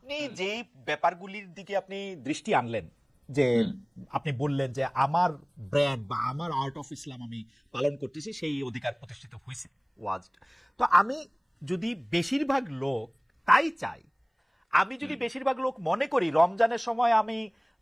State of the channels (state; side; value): identical; both; correlation 1.00